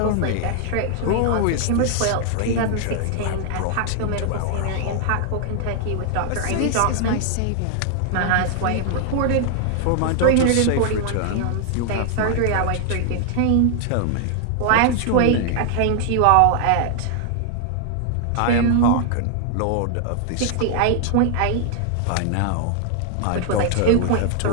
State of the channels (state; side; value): different; both; correlation 0.00